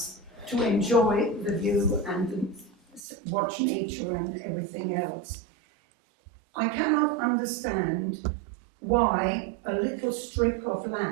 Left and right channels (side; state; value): left; drops out; at 3.0 s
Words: to enjoy the view and watch nature and everything else. I cannot understand why a little strip of